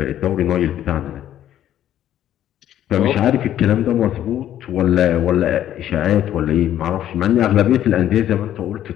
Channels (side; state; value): right; quieter; 11.5 dB